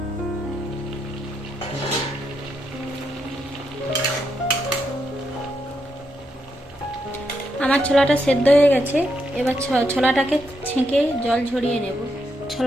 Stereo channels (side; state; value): both; normal; correlation 0.81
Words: আমার ছোলাটা সেদ্ধ হয়ে গেছে। এবার ছোলাটাকে ছেঁকে জল ঝরিয়ে নেব।